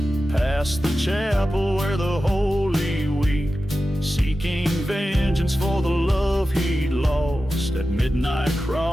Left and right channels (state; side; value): normal; both; correlation 0.93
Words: past the chapel where the holy weep, seeking vengeance for the love he'd lost. At midnight